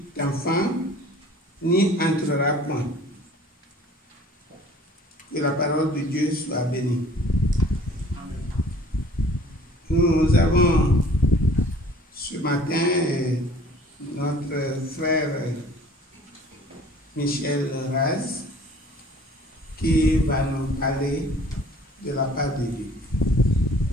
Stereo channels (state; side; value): normal; both; correlation 0.51